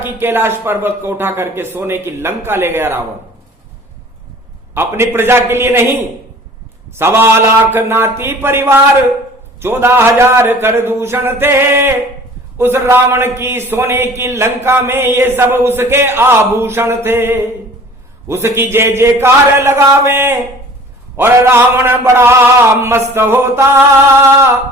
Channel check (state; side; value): normal; both; correlation 0.47